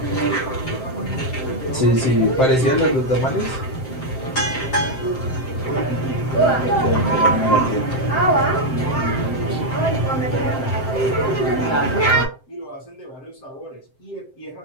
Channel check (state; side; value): late; right; 7.7 ms